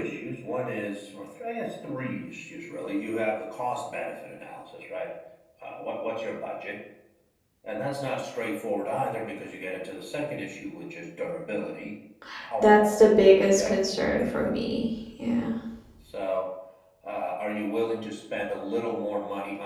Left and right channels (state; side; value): identical; both; correlation 1.00